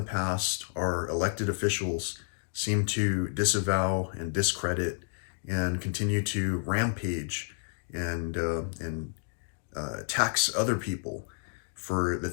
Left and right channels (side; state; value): right; silent; digital silence